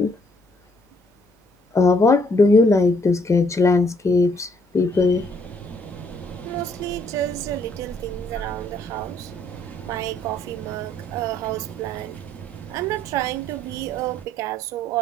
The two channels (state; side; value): normal; both; correlation 0.67